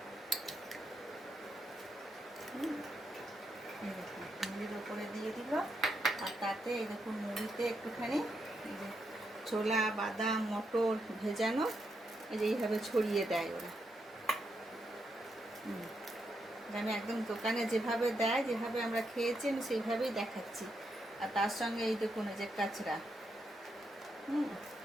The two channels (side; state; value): both; normal; correlation 0.82